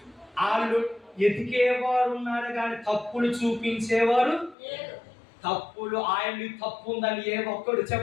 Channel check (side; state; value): right; drops out; at 4.5 s